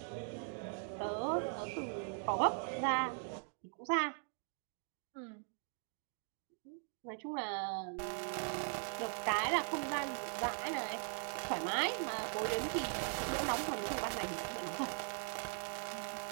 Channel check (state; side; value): silent; left; 51 dB below the other